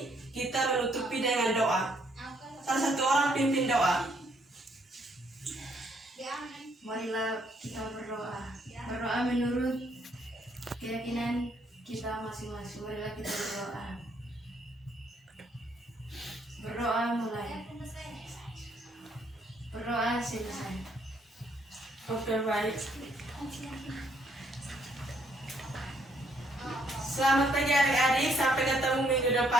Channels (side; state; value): both; normal; correlation 0.69